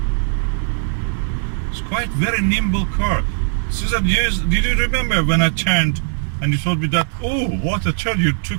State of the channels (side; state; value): left; silent; digital silence